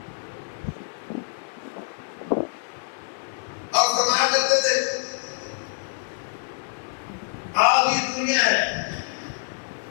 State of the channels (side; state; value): right; silent; digital silence